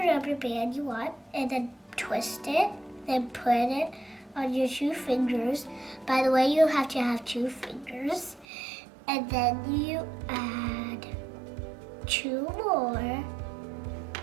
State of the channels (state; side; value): drops out; left; at 8.5 s